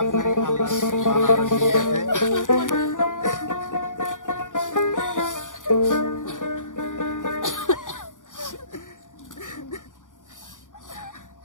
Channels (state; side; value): late; right; 0.87 ms